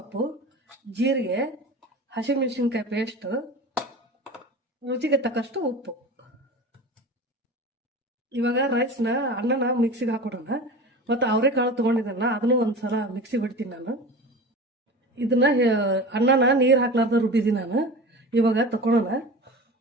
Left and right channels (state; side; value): normal; both; correlation 0.34